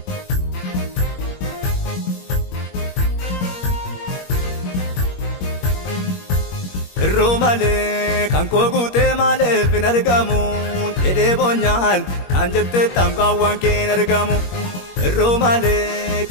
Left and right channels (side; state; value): right; late; 21 ms